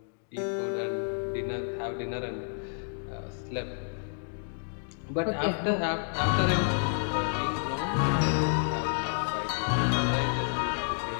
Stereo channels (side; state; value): right; silent; digital silence